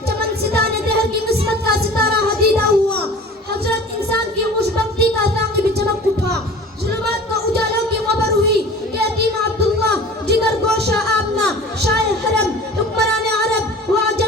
چمن ستانے دہر کی قسمت کا ستارہ حدیدہ ہوا. حضرت انسان کی خوشبختی کا ثاقب چمک اٹھا. ظلمات کو اجالوں کی خبر ہوئی کہ یتیم عبداللہ، جگر گوشہ آمنہ، شاہ حرم، حکمران عرب و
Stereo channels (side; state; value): both; normal; correlation 0.41